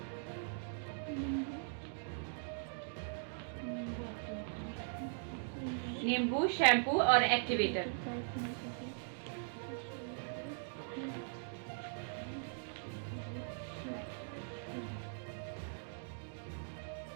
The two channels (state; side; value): silent; left; digital silence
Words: नींबू, शैम्पू और एक्टिवेटर।